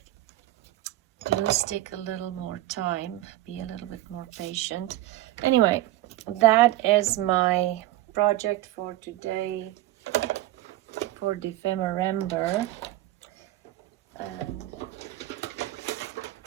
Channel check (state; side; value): quieter; left; 15.8 dB